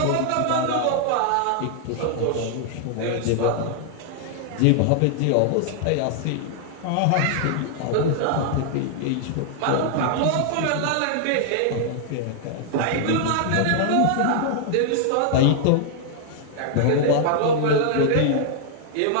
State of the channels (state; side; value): different; both; correlation 0.00